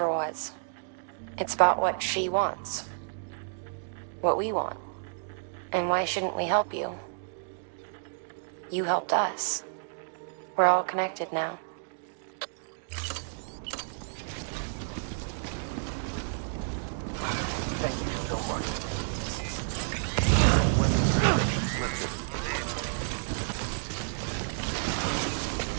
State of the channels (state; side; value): silent; left; digital silence